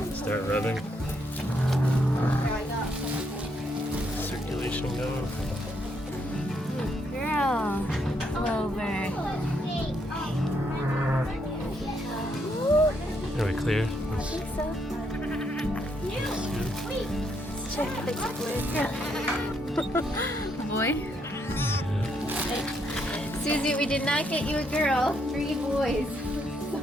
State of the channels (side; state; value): both; normal; correlation 0.75